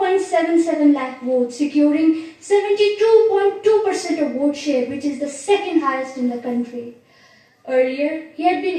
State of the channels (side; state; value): both; identical; correlation 1.00